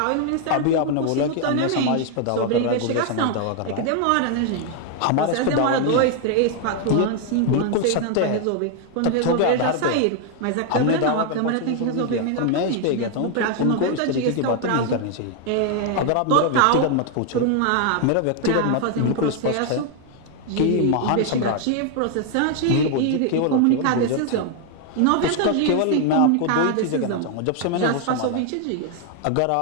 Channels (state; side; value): different; both; correlation 0.00